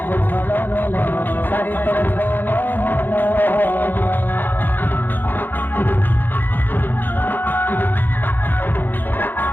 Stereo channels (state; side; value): late; right; 0.091 ms